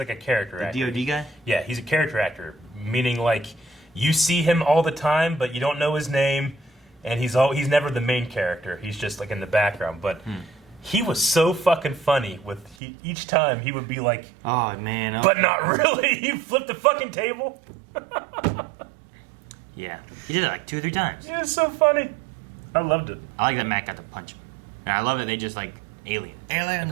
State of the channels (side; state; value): left; drops out; at 12.8 s